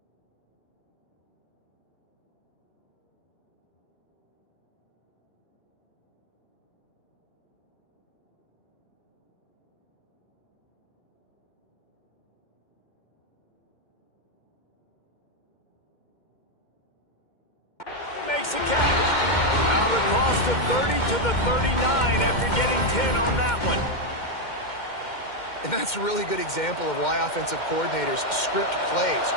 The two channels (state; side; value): late; right; 2.1 ms